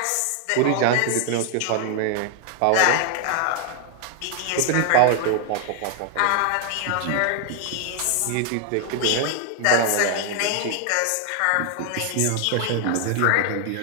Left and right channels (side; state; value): both; different; correlation 0.00